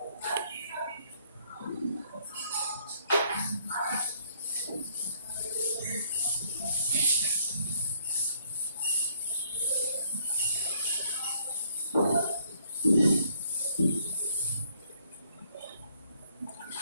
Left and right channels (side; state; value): both; inverted; correlation -0.65